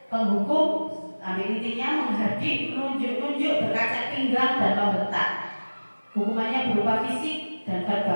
Penghukum, ambil intinya menghardik, menunjuk-nunjuk, berkaca pinggang dan membentak. Hukumannya berupa fisik dan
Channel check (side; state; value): both; inverted; correlation -1.00